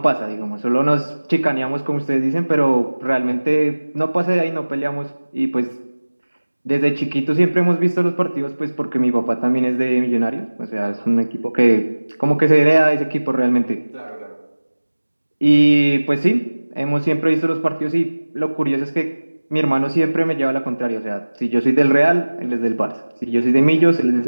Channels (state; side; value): inverted; both; correlation -1.00